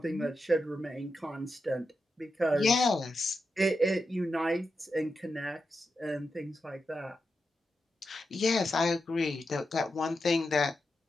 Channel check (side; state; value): both; normal; correlation 0.88